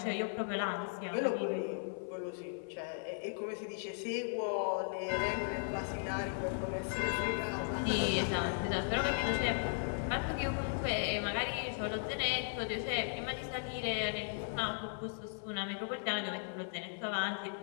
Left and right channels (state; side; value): silent; right; 53 dB below the other